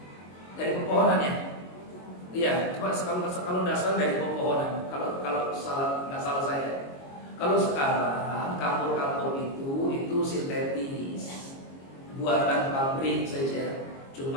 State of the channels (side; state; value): right; late; 22 ms